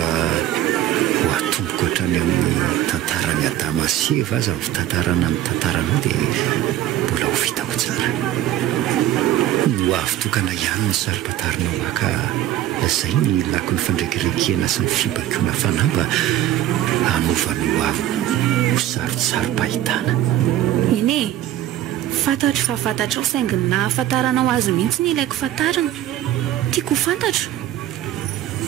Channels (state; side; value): quieter; left; 12.7 dB